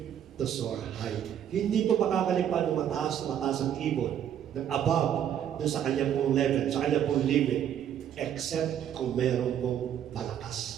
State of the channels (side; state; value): left; quieter; 9.8 dB